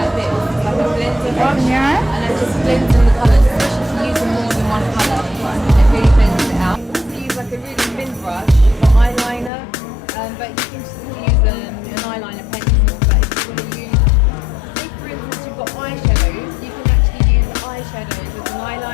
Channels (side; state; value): right; drops out; at 9.5 s